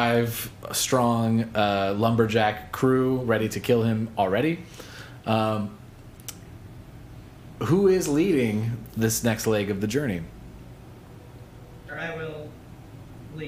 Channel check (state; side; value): identical; both; correlation 1.00